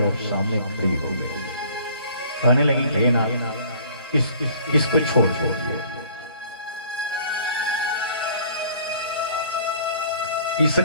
और सामने खड़ी हो गई। कहने लगी हे ना, इसको छोड़ दीजिए।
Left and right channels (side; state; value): both; inverted; correlation -0.53